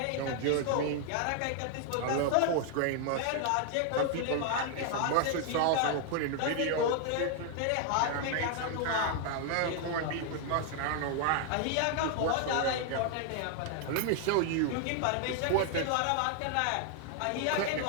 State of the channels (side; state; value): both; different; correlation 0.00